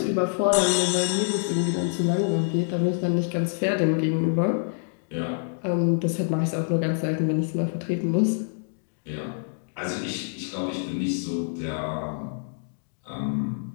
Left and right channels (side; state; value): right; silent; digital silence